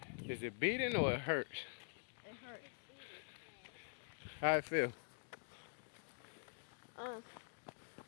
beating. Is it beating or it hurts? It hurts. How it feel? Um.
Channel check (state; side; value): silent; right; digital silence